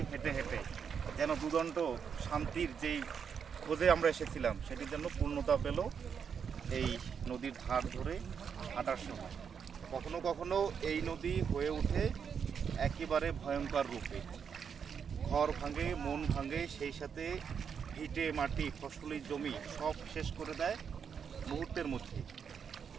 হেঁটে হেঁটে যেন দুদণ্ড শান্তির যেই খোঁজে আমরা এসেছিলাম সেটি যেন পূর্ণতা পেল এই নদীর ধার ধরে হাঁটার সময়। কখনো কখনো এই নদী হয়ে ওঠে একেবারে ভয়ঙ্কর রূপে। ঘর ভাঙে, মন ভাঙে, সেই সাথে ভিটে মাটি, ফসলি জমি সব শেষ করে দেয় মুহূর্তের মধ্যে।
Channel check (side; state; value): left; quieter; 6.9 dB